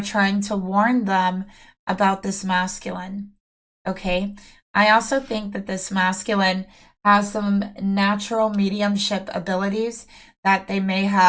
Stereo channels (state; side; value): identical; both; correlation 1.00